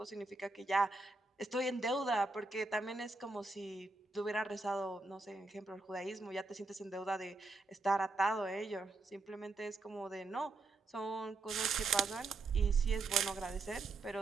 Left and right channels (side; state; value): left; quieter; 3.5 dB